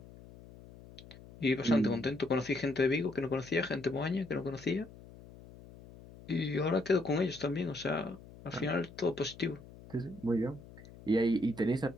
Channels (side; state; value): left; noise; hum, 19 dB below the sound